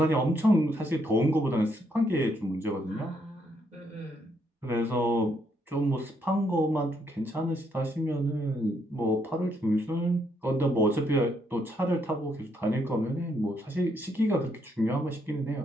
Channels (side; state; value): both; normal; correlation 0.74